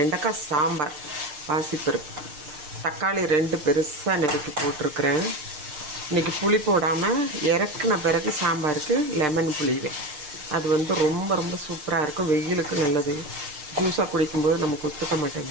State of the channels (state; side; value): late; left; 6.6 ms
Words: சாம்பார், பாசிப்பருப்பு, தக்காளி 2 பெருசாக நறுக்கி போட்டிருக்கிறேன். இன்றைக்கி புளி போடாமல் இறக்குன பிறகு சாம்பாருக்கு லெமன் புளிவேன். அது வந்து ரொம்ப ரொம்ப சூப்பராக இருக்கும், வெயிலுக்கு நல்லது. ஜூஸாக குடிக்கும்போது நமக்கு ஒத்துக்க